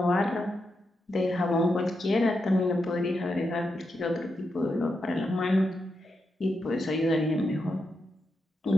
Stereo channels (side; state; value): both; normal; correlation 0.85